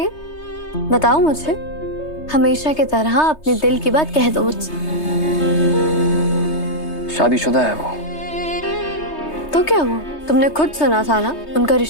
बताओ मुझे। हमेशा की तरह अपने दिल की बात कह दो मुझसे। शादीशुदा है वो। तो क्या हुआ, तुमने खुद सुना था ना, उनका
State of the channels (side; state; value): right; late; 3.2 ms